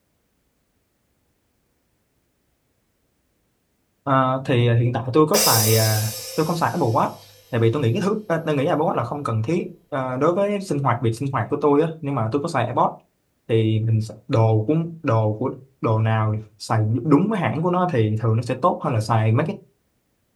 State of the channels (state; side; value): identical; both; correlation 1.00